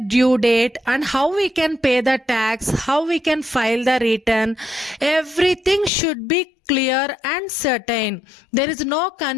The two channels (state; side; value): drops out; right; at 5.9 s